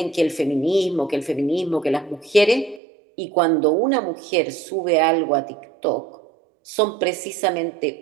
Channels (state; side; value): drops out; left; at 2.8 s